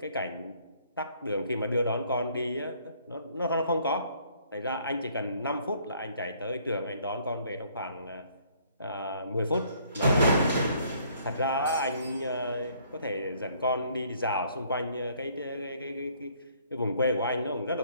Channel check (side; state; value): both; inverted; correlation -0.63